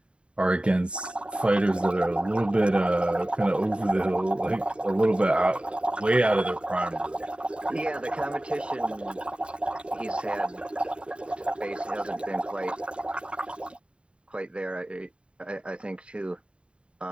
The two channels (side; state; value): left; late; 0.056 ms